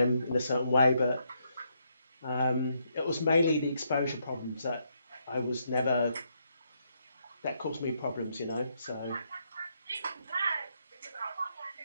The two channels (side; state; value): both; inverted; correlation -0.77